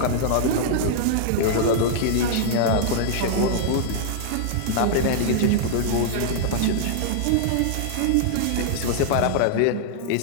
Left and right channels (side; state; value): both; different; correlation -0.01